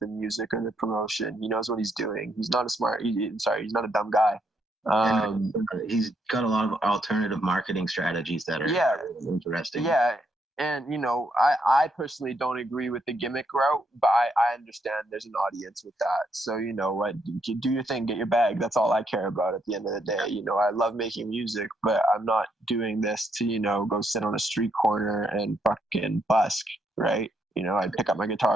the music or the promotion. He knows what he's doing. He's not he's not a dumb guy. He's got a lot of alternative marketing strategies that are interesting. Yeah. And, you know, I personally don't agree with the gimmick route, but I understand there's an audience with that. So, you know what, do your thing, get your bag. That's all I care about at the end of the day. You know, I love making music, but I'm not doing this to, you know, go sit on a street corner and fucking busk, right? You know, I'd pick up my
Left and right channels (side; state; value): both; normal; correlation 0.75